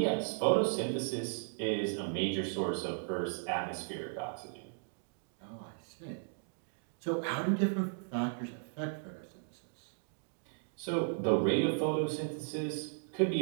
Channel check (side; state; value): left; silent; digital silence